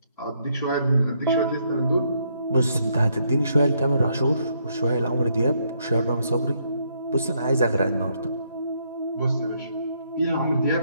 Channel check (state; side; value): inverted; both; correlation -0.73